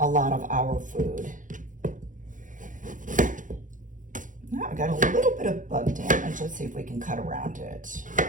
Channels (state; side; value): late; left; 0.38 ms